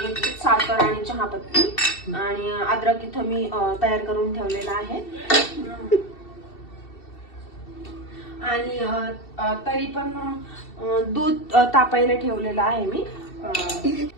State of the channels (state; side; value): late; right; 2.7 ms